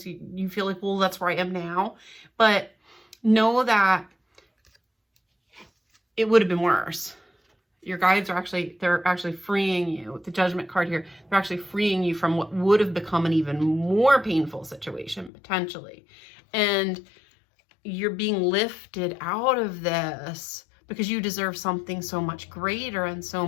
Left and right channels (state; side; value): drops out; right; at 15.3 s